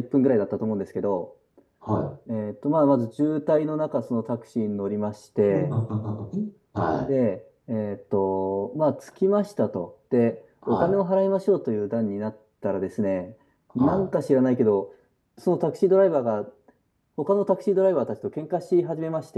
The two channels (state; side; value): identical; both; correlation 1.00